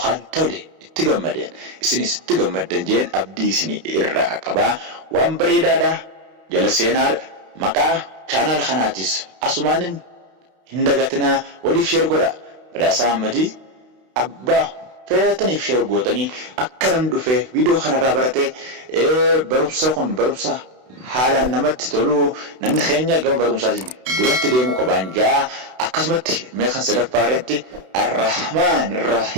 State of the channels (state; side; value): late; left; 32 ms